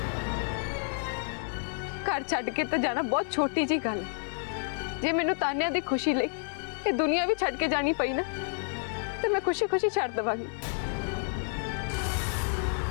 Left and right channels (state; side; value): silent; right; 58 dB below the other